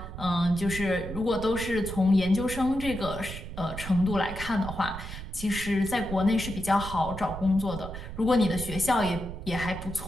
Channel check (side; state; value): right; noise; rumble, 9 dB below the sound